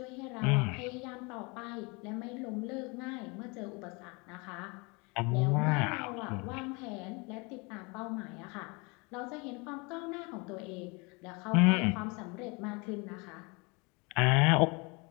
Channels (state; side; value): quieter; right; 28.9 dB